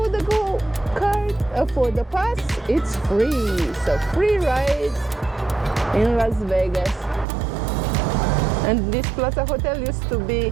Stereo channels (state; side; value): drops out; left; at 7.2 s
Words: the Gold Card, for the pass, it's free. So free rides in Las Vegas. And this Plaza Hotel used to be,